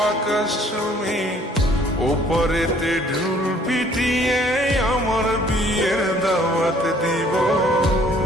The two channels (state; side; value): normal; both; correlation 0.58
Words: আকাশ চুমি, ওপরেতে ঢুল পিটিয়ে আমার বিয়ের দাওয়াত দিব।